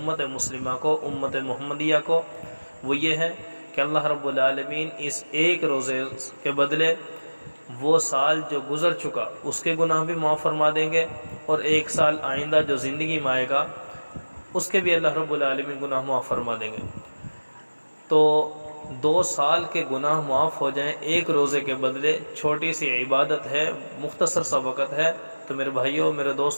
مسلمہ کو، امت محمدیہ کو، وہ یہ ہے کہ اللہ رب العالمین اس ایک روزے کے بدلے وہ سال جو گزر چکا اس کے گناہ بھی معاف فرما دیں گے، اور ایک سال آئندہ جو زندگی میں آئے گا اس کے بھی اللہ رب العالمین گناہ معاف فرما دیں گے۔ تو 2 سال کے گناہ معاف ہو جائیں ایک روزے کے بدلے، چھوٹی سی عبادت ہے، مختصر سا وقت ہے، تو میرے بھائیوں، میرے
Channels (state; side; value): inverted; both; correlation -1.00